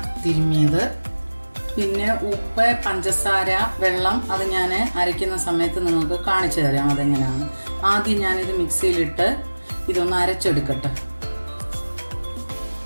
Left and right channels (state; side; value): inverted; both; correlation -1.00